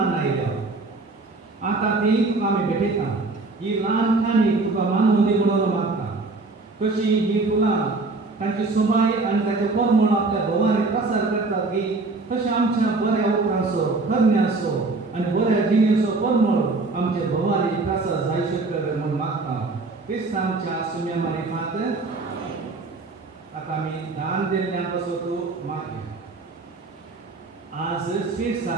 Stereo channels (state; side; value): quieter; left; 3.6 dB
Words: आयल्या आतां ती तुका आमी भेटयता ही ल्हान खाणी तुका मानून दी म्हणून मागता कशी ही फुलां तांची सोबाय आनी ताचे परमळ आपल्या भोवारी प्रसार करतात की तशें आमच्या बऱ्या उपरांचो करण्याचो आनी बऱ्या जिणेचो परमळ आमच्या भोवारी प्रसार जायचे कर म्हूण मागता क्रिस्तांच्या सुम्या मारिफांत आतां आमी दान दिल्ल्यां पासून तूं मागया आज